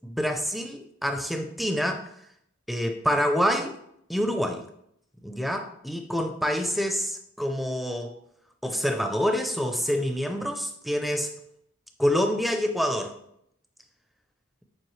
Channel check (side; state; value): both; normal; correlation 0.84